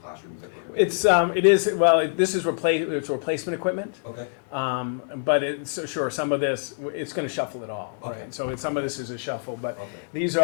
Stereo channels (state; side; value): silent; right; digital silence